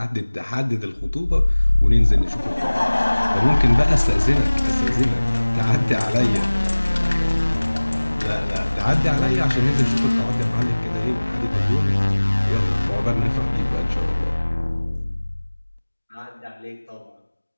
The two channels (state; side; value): inverted; both; correlation -1.00